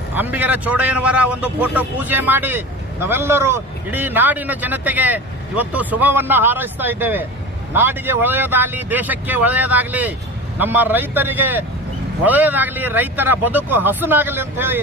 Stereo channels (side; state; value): both; normal; correlation 0.31